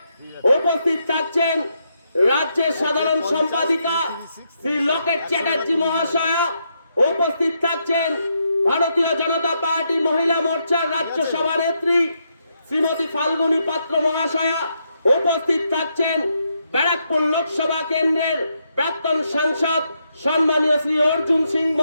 উপস্থিত থাকছেন রাজ্যের সাধারণ সম্পাদিকা শ্রী লকেট চ্যাটার্জি মহাশয়া। উপস্থিত থাকছেন ভারতীয় জনতা পার্টি মহিলা মোর্চার রাজ্য সভানেত্রী শ্রীমতী ফাল্গুনী পাত্র মহাশয়া। উপস্থিত থাকছেন ব্যারাকপুর লোকসভা কেন্দ্রের প্রাক্তন সাংসদ সম্মানীয় শ্রী অর্জুন সিং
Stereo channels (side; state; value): both; inverted; correlation -0.80